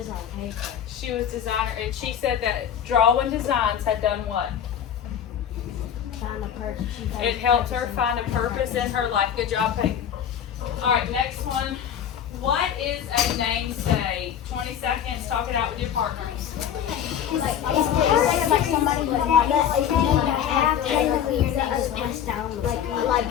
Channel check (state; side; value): quieter; right; 9.2 dB